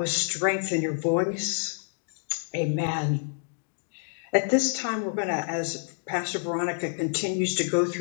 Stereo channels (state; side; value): silent; right; digital silence